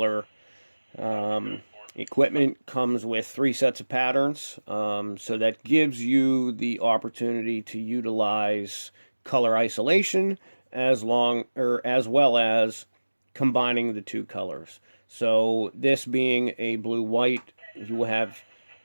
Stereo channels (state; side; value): inverted; both; correlation -1.00